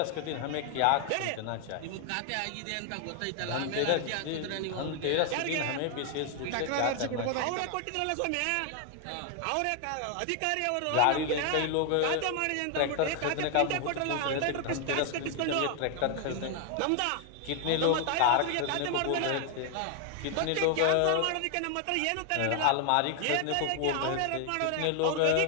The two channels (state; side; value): different; both; correlation 0.00